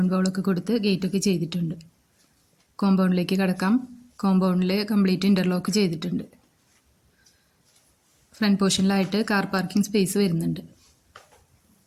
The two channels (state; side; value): identical; both; correlation 1.00